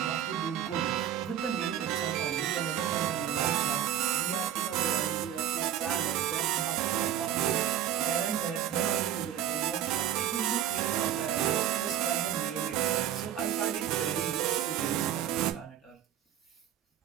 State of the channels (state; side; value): quieter; left; 10.9 dB